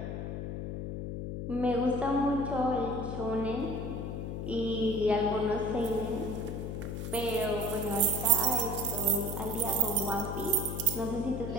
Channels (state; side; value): noise; left; hum, 4 dB below the sound